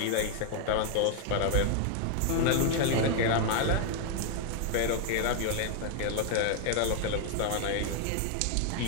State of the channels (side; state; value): both; different; correlation 0.00